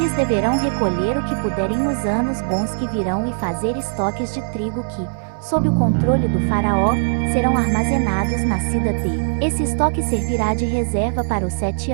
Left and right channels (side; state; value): left; silent; digital silence